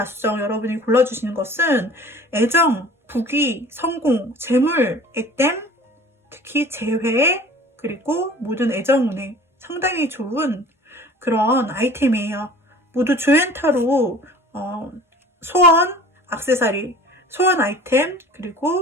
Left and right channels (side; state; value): both; normal; correlation 0.45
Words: 여러분이 골라주시는 것은 애정, 부귀, 성공, 재물, 액땜, 특히 재회, 그리고 모든 애정운에 상당히 좋은 그런 아이템이에요. 모두 조앤타로 소원, 액세서리, 소원 아이템,